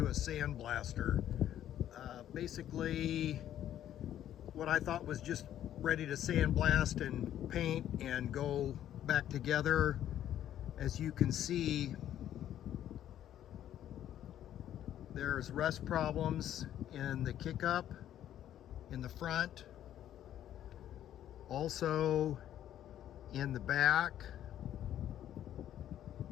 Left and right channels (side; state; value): right; quieter; 11.4 dB